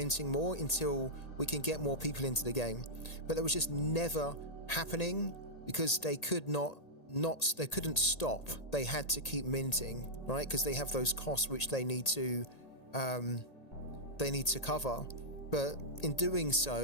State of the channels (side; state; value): right; late; 1.8 ms